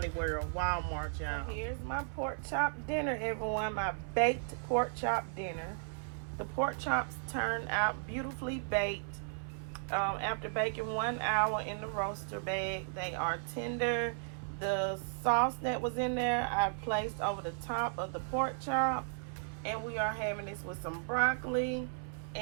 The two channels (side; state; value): left; silent; 54 dB below the other